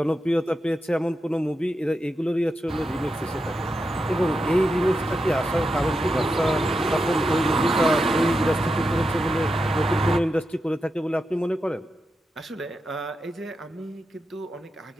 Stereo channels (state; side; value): normal; both; correlation 0.87